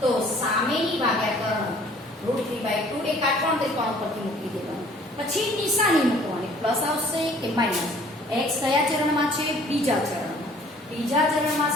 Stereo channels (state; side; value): normal; both; correlation 0.55